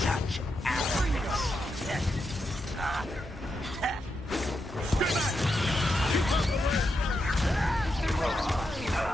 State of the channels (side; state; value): both; normal; correlation 0.85